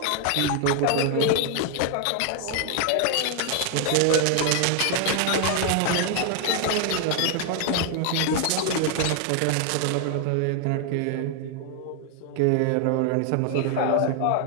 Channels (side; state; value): both; different; correlation 0.00